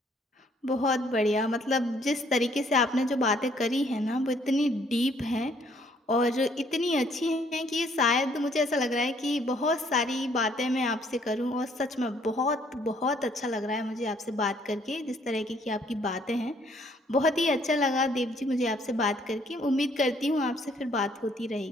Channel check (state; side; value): normal; both; correlation 0.64